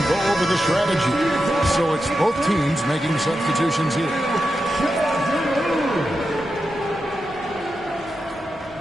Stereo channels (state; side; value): noise; right; hum, 29 dB below the sound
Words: go over the strategy. So it's both teams making substitutions here.